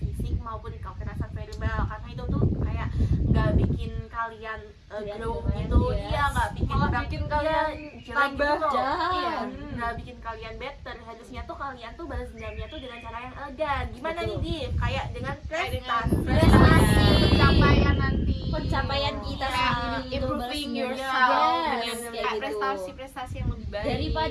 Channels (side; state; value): both; identical; correlation 1.00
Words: maupun kekerasan verbal, karena itu tuh kayak nggak bikin kalian grow Kalian gitu. yes. Iya, nggak bikin Malah bikin kalian jelek tambah gitu loh. jahat. Iya, nggak bikin kalian better. Harusnya tuh kalian tuh balas dendamnya tuh dengan cara yang elegan. Gimana Betul. nih, Div? Kayak dengan Prestasi. prestasi. Pencapaian nanti. Pencapaian kita Kayak sendiri itu improving balas yourself dendam. dengan Yes, kayak kayak gitu. prestasi-prestasi yang lebih baik.